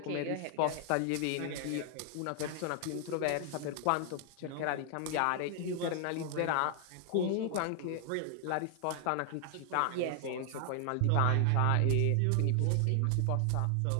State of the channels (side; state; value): both; different; correlation 0.00